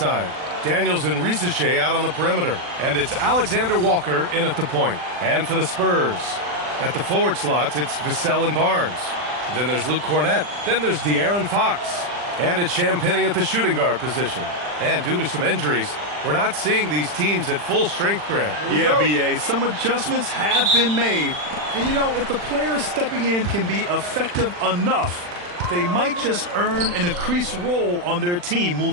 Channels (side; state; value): left; late; 40 ms